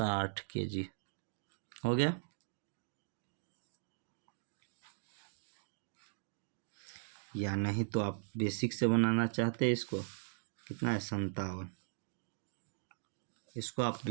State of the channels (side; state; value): left; silent; digital silence